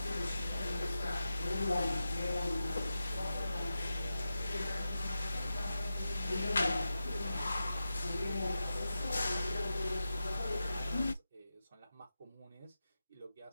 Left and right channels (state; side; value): inverted; both; correlation -0.91